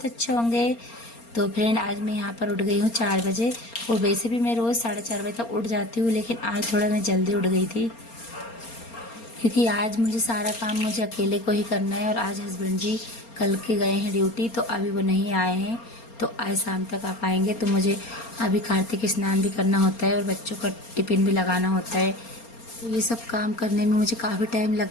अच्छे होंगे। तो फ्रेंड, आज मैं यहाँ पर उठ गई हूँ 4 बजे। और वैसे भी मैं रोज़ 4:30 बजे तक उठ जाती हूँ, लेकिन आज थोड़ा मैं जल्दी उठ गई थी क्योंकि आज मुझे सारा काम मुझे अकेले को ही करना है। और आज हस्बैंड जी कल के गए हैं ड्यूटी, तो अभी वो नहीं आए हैं। तो आज शाम तक आ पाएंगे। तो मुझे अभी कार्तिक स्नान भी करना होता है और बच्चों का टिफ़िन भी लगाना होता है। तो ये सब काम करने में मुझे काफ़ी टाइम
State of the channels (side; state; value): right; late; 4.3 ms